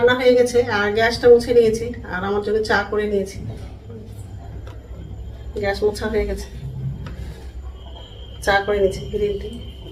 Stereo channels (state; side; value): identical; both; correlation 1.00